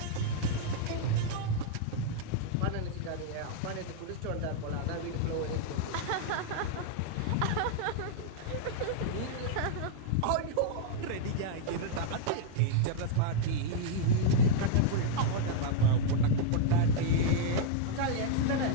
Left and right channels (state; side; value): different; both; correlation -0.01